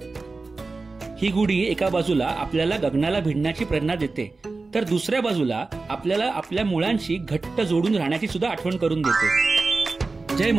ही गुढी एका बाजूला आपल्याला गगनाला भिडण्याची प्रेरणा देते तर दुसऱ्या बाजूला आपल्याला आपल्या मुळांशी घट्ट जोडून राहण्याची सुद्धा आठवण करून देते। जय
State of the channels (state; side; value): quieter; left; 3.8 dB